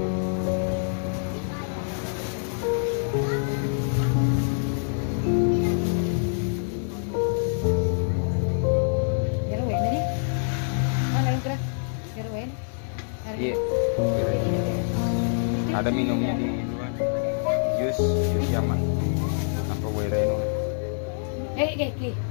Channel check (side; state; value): right; silent; digital silence